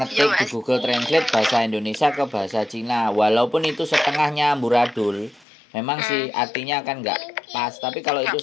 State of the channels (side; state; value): right; drops out; at 5.5 s